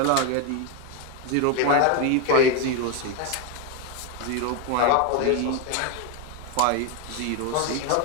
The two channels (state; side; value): different; both; correlation 0.02